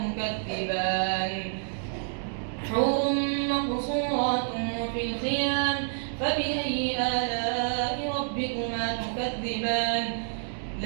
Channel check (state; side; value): silent; left; digital silence